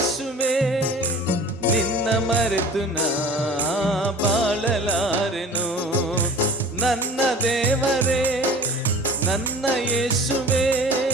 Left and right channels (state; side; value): normal; both; correlation 0.41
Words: ನಿನ್ನ ಮರೆತು ನಾ ಬಾಳಲಾರೆನು. ನನ್ನ ದೇವರೇ, ನನ್ನ ಯೇಸುವೆ,